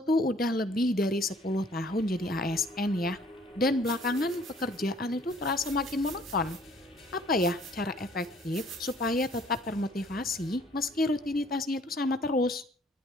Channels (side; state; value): both; normal; correlation 0.58